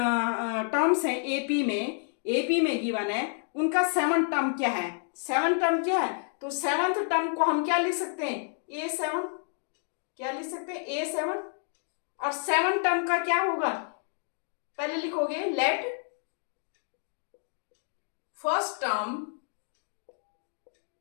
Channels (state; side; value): silent; right; 55 dB below the other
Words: टर्म्स हैं, एपी में गिवन है, उनका सेवन टर्म क्या है, सेवन टर्म क्या है, तो सेवंथ टर्म को हम क्या लिख सकते हैं, a7, क्या लिख सकते हैं, a7, और सेवन टर्म का क्या होगा, पहले लिखोगे let first